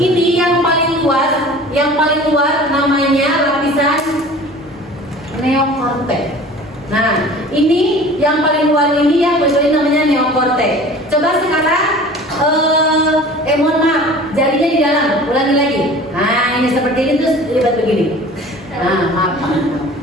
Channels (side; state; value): both; normal; correlation 0.43